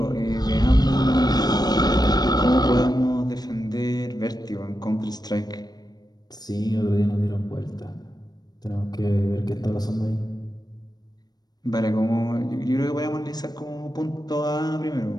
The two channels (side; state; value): right; late; 0.19 ms